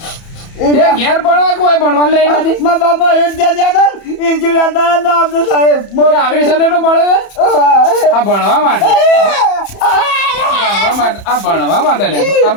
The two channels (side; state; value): right; late; 31 ms